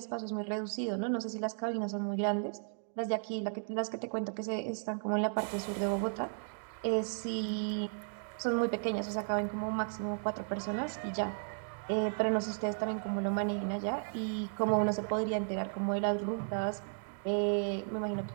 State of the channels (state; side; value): silent; left; digital silence